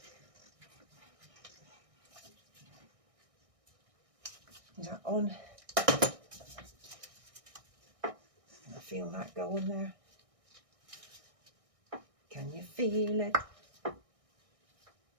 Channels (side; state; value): left; late; 1.6 ms